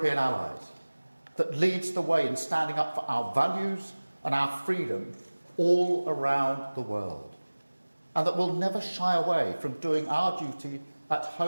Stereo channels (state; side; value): inverted; both; correlation -1.00